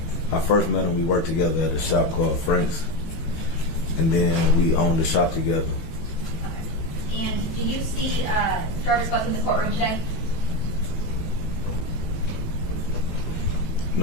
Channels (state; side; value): late; right; 18 ms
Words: I first met him. We worked together at a shop called Frank's, and then we owned the shop together. Okay. And do you see Jarvis Butts in the courtroom today?